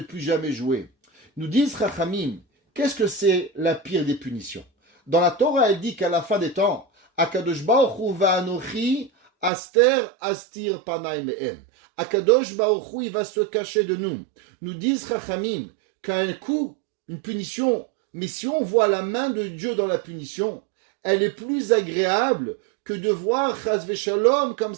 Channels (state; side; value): drops out; left; at 9.5 s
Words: plus jamais jouer. Nous disent Chachamim, qu'est-ce que c'est la pire des punitions? Dans la Torah, elle dit qu'à la fin des temps, Akadosh Baruch Hu va'anochi aster astir panay me'em. Akadosh Baruch Hu, il va se cacher de nous. Nous disent Chachamim qu'un coup, une punition, mais si on voit la main de Dieu dans la punition, elle est plus agréable que de voir Chas v'Shalom comme